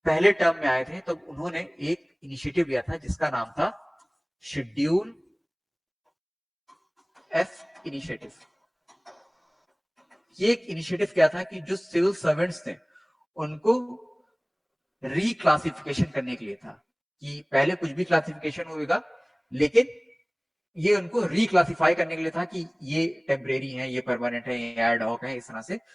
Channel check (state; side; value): identical; both; correlation 1.00